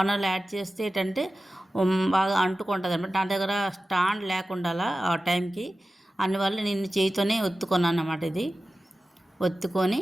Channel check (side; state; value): both; normal; correlation 0.95